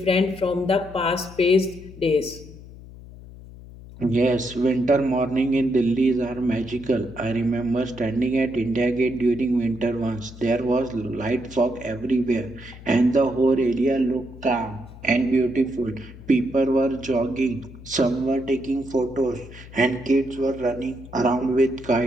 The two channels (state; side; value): noise; left; hum, 17 dB below the sound